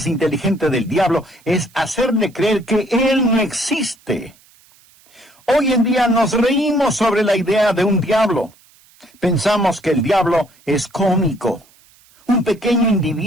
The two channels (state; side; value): noise; right; hiss, 30 dB below the sound